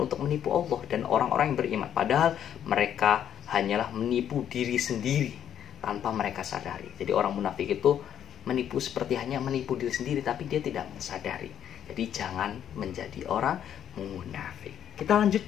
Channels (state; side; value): quieter; right; 9.8 dB